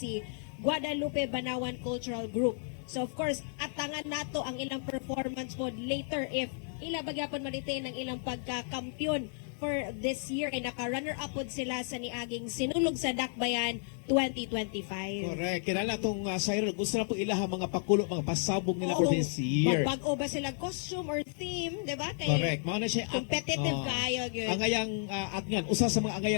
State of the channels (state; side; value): silent; right; 56 dB below the other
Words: Guadalupe Banawan Cultural Group. So of course, atangan nato ang ilang performance po later if ila bagyapon malitain ang ilang pagka-kampiyon for this year kay naka-runner-up pod sila sa niaging Sinulog sa Dakbayan 2025. Correct. Kinala tong Siren, gusto na po ilaha mga pakulo, mga pasabog nila for this year. Magbago ba sila costume or theme, di ba? Kay Correct. Mao na siya competitive kayo gyud. angayang atngan, usa sa mga